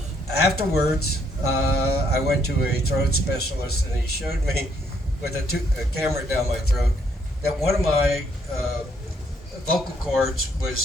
Afterwards, I went to a throat specialist, and he showed me with a camera down my throat that one of my vocal cords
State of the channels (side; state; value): both; normal; correlation 0.70